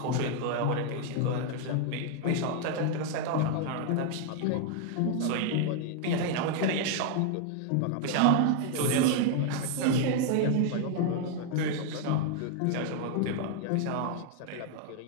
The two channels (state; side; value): different; both; correlation 0.00